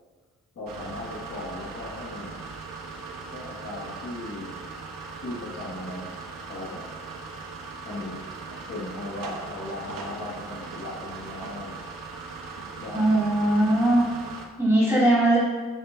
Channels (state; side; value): normal; both; correlation 0.71